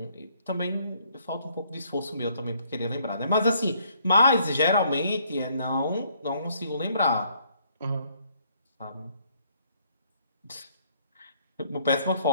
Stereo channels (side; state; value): both; inverted; correlation -0.66